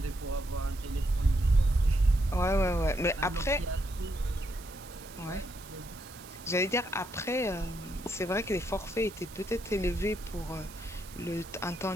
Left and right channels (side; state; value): right; noise; hiss, 18 dB below the sound